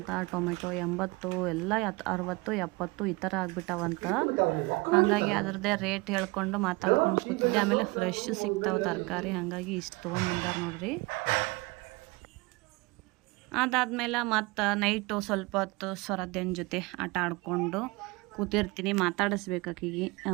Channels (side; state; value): left; quieter; 24.8 dB